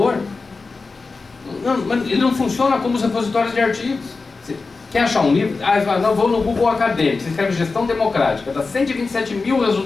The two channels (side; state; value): right; quieter; 4.1 dB